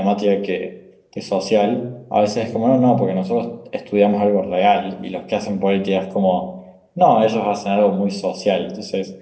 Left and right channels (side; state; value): both; identical; correlation 1.00